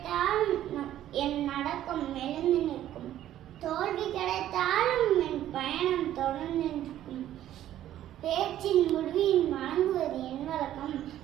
என் நடக்கம் மெலிந்து நிற்கும், தோல்வி கிடைத்தாலும் என் பயணம் தொடர்ந்து நிற்கும். பேச்சின் முடிவில் வழங்குவது என் வழக்கம்.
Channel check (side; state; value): left; quieter; 12.3 dB